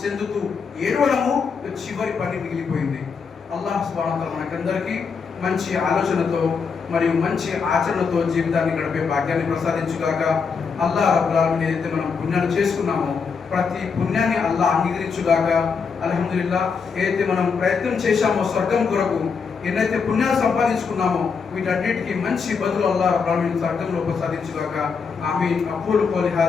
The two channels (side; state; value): right; quieter; 5.6 dB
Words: చెందుతూ ఏడవడము చివరి పని మిగిలిపోయింది. అల్లాహ్ సుబ్హానహు వ తఆలా మనకందరికీ మంచి ఆలోచనతో మరియు మంచి ఆచరణతో జీవితాన్ని గడిపే భాగ్యాన్ని ప్రసాదించుగాక. అల్లాహ్ రబ్బుల్ ఆలమీన్ ఏదైతే మనం పుణ్యాలు చేసుకున్నామో, ప్రతి పుణ్యాన్ని అల్లాహ్ అంగీకరించుగాక. అల్హమ్దులిల్లాహ్, ఏదైతే మనం ప్రయత్నం చేశామో స్వర్గం కొరకు, ఎన్నైతే పుణ్యాలు సంపాదించుకున్నామో, వీటన్నిటికీ మంచి బదులు అల్లాహ్ రబ్బుల్ ఆలమీన్ స్వర్గంలో ప్రసాదించుగాక. ఆమీన్. అఖూలు ఖౌలి